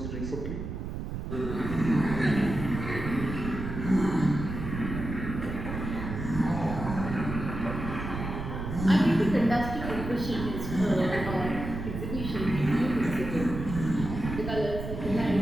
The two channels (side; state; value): right; noise; rumble, 6 dB below the sound